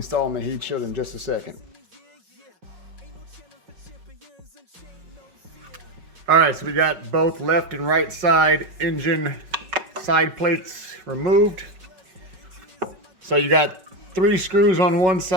the heat shield in just a second. All right, so we got both left and right side engine side plates removed. So you got 3 screws on one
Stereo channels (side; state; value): left; late; 5.4 ms